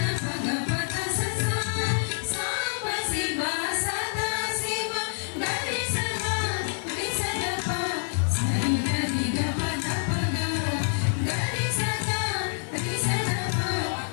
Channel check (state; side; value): silent; right; digital silence